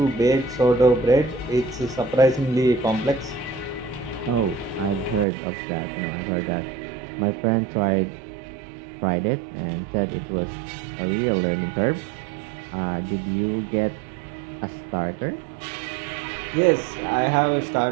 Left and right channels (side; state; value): left; drops out; at 5.2 s